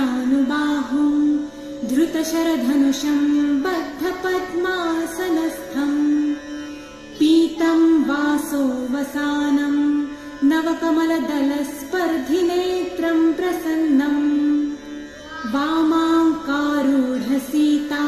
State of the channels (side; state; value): both; identical; correlation 1.00